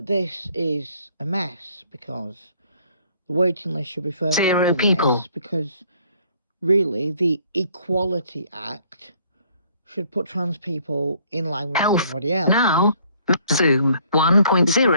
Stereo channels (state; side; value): inverted; both; correlation -0.62